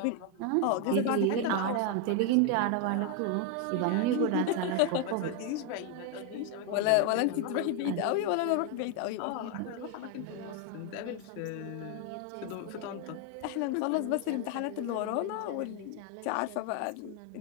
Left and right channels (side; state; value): both; different; correlation 0.01